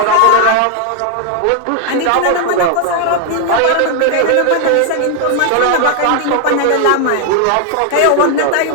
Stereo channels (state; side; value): different; both; correlation 0.00